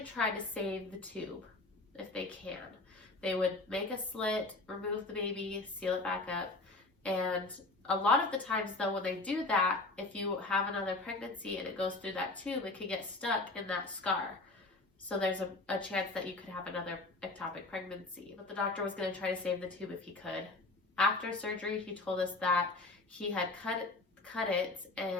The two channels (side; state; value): right; quieter; 3.1 dB